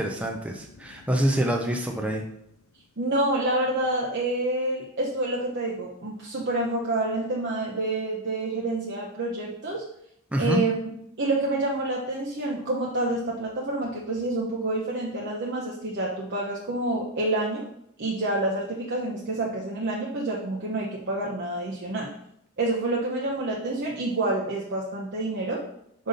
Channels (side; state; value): both; normal; correlation 0.09